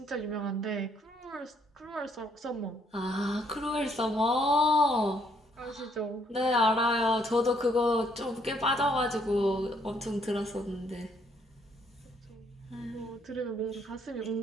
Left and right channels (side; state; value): both; normal; correlation 0.69